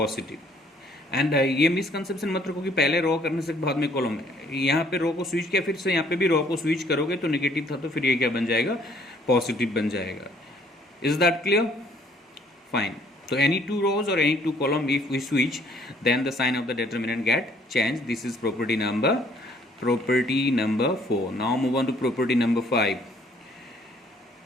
And ये misconception मत रखो कि पहले रो करने से बाद में कॉलम है। यहाँ पे रो को स्विच किया, फिर से यहाँ पे भी रो को स्विच करोगे तो नेगेटिव था, तो फिर ये क्या बन जाएगा, पॉजिटिव बन जाएगा। Is that clear? Fine. So any two rows or any two column, if we switch, then the sign of the determinant get changed. This is property number 4. Now move on to property number 5.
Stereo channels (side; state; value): both; normal; correlation 0.61